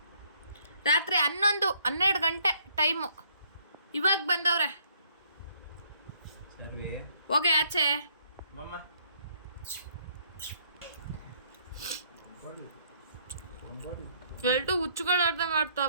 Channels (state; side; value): inverted; both; correlation -0.65